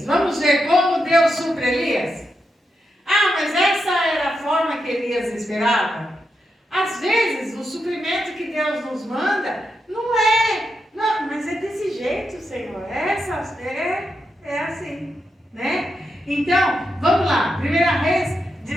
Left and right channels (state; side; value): normal; both; correlation 0.85